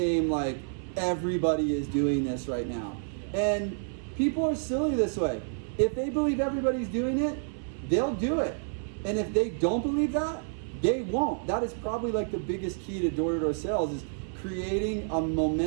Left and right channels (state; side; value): silent; left; 57 dB below the other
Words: like everybody is doing this right now. And people are silly this way. If they believe everybody's doing it, they'll do it. And if they don't believe that, they won't. That is probably like the biggest key to door-to-door sales, is creating a